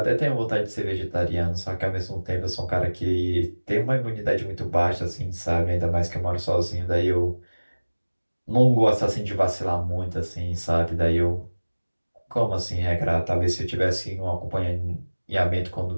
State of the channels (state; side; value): inverted; both; correlation -1.00